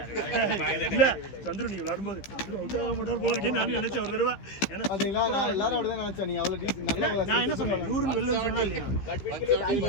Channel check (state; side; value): late; right; 15 ms